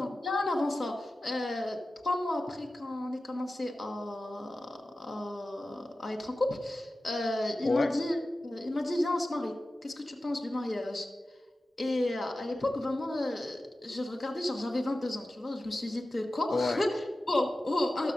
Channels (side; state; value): both; normal; correlation 0.94